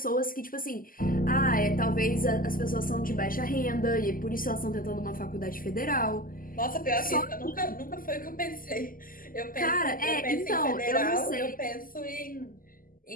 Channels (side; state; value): right; late; 0.41 ms